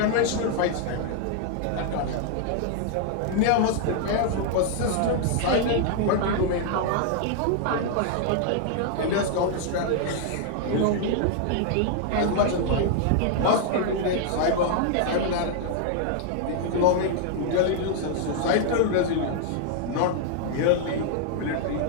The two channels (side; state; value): both; different; correlation 0.00